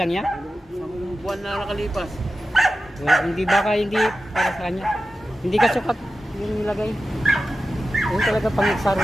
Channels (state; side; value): normal; both; correlation 0.93